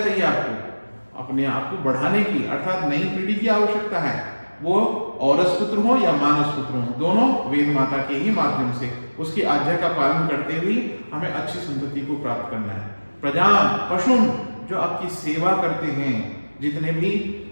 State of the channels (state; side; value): inverted; both; correlation -1.00